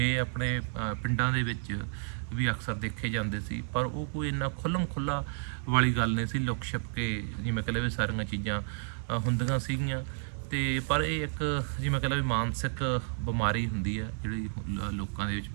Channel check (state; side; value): silent; left; digital silence